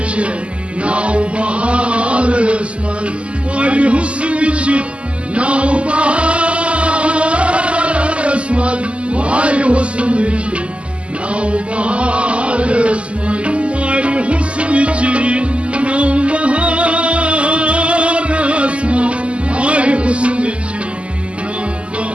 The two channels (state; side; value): late; left; 0.056 ms